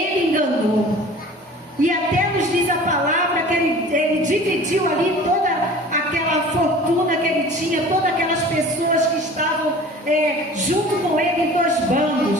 enganou. E até nos diz a palavra que ele dividiu ali toda aquela fortuna que ele tinha, todas aquelas pessoas que estavam junto com ele em dois bandos.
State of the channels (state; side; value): normal; both; correlation 0.43